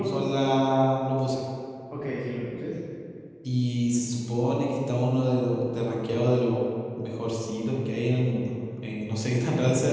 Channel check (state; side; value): identical; both; correlation 1.00